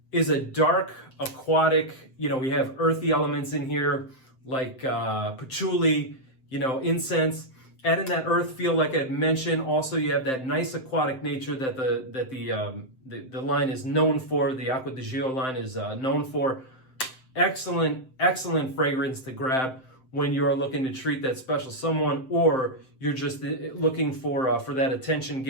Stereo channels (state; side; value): late; right; 7.7 ms